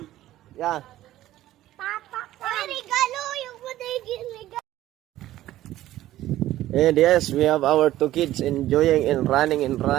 Yeah. Papa come. Ay, regalo yung regalo. And yes, we have our two kids enjoying and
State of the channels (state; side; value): quieter; left; 14.4 dB